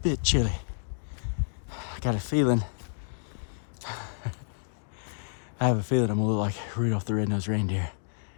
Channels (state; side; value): silent; right; digital silence